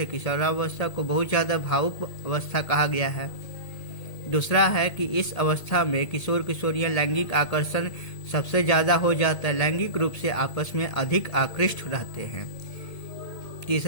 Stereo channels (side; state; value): right; late; 1.8 ms